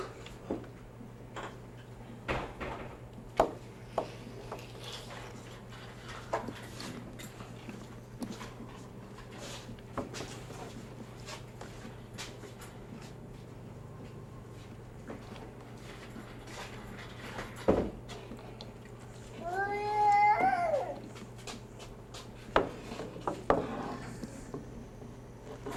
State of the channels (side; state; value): both; identical; correlation 1.00